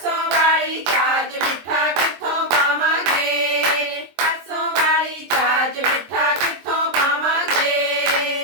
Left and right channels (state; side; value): late; left; 23 ms